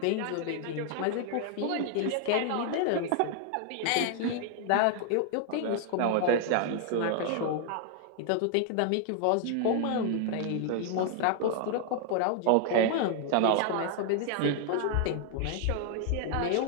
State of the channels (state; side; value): different; both; correlation 0.00